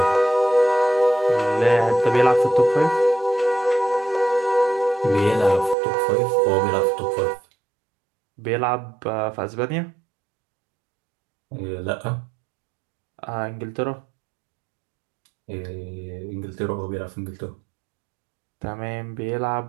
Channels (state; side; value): drops out; left; at 5.8 s